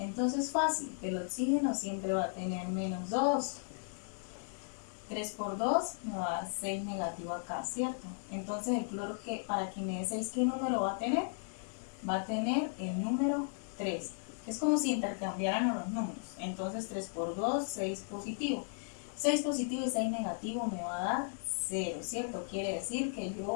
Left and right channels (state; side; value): silent; right; digital silence